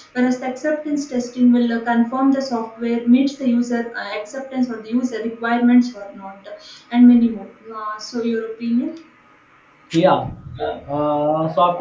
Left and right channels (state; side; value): identical; both; correlation 1.00